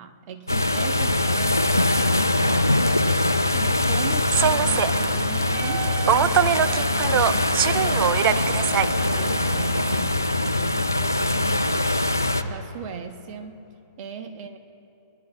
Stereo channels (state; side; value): inverted; both; correlation -0.61